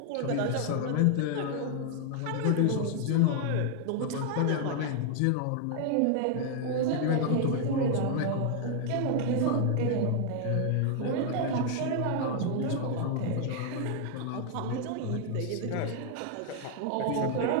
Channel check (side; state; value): both; different; correlation 0.00